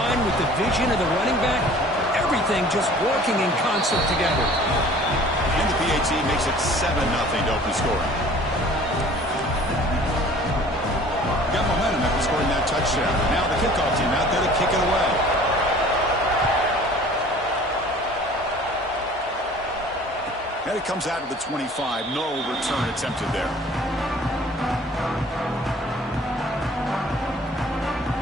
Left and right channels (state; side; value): normal; both; correlation 0.49